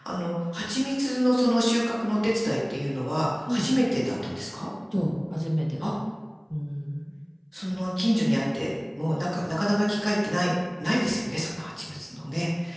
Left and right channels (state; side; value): identical; both; correlation 1.00